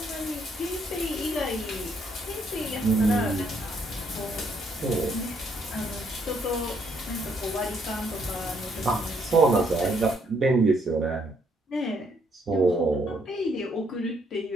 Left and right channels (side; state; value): both; normal; correlation 0.71